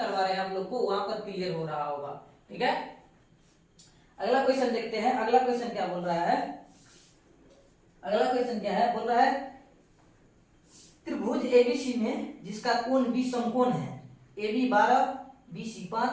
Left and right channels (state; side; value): identical; both; correlation 1.00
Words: रहे हैं आप लोग को, वहां पर क्लियर हो रहा होगा, ठीक है। अगला क्वेश्चन देखते हैं, अगला क्वेश्चन क्या बोल रहा है, अगला क्वेश्चन क्या है, बोल रहा है त्रिभुज एबीसी में जिसका कोण B समकोण है, AB 12 BC